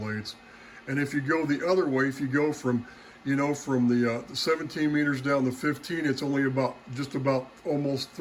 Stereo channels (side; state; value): both; identical; correlation 1.00